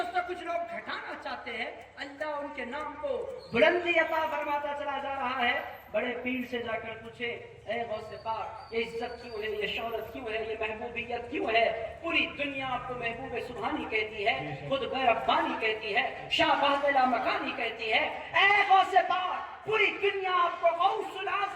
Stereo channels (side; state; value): both; identical; correlation 1.00